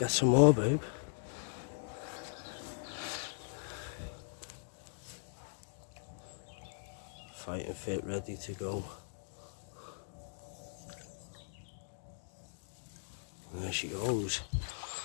some more, babe. Fighting fit, ready to go. And there she goes.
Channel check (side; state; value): right; silent; digital silence